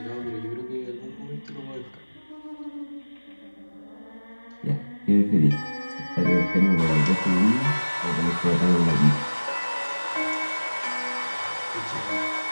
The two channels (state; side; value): inverted; both; correlation -1.00